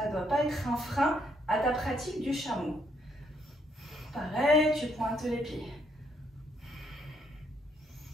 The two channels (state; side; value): normal; both; correlation 0.71